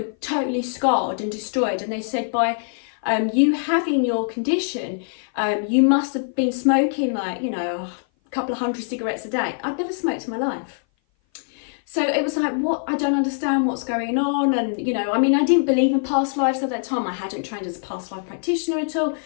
totally scarred and destroyed. And they said, by you having your condition, you must have been smoking like, you know, a couple of hundred cigarettes a day. I'd never smoked in my life. So it was like, what? I don't understand what's going on. And, you know, I mean, I didn't believe in past lives at that time. I hadn't trained as a past life practitioner at all.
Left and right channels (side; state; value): right; silent; 57 dB below the other